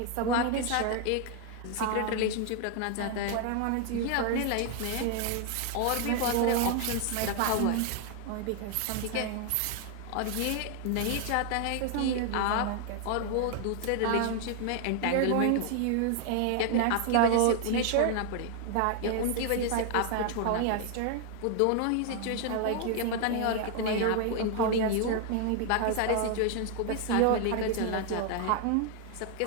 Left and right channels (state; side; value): different; both; correlation 0.00